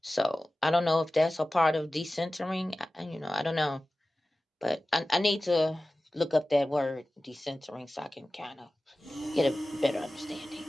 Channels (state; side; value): normal; both; correlation 0.96